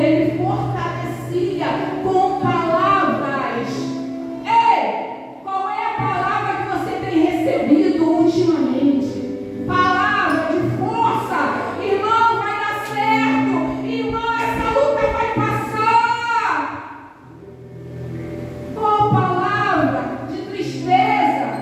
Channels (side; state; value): both; identical; correlation 1.00